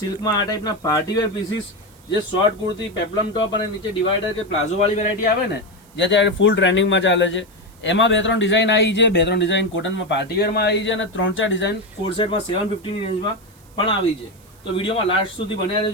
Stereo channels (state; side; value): noise; right; hiss, 28 dB below the sound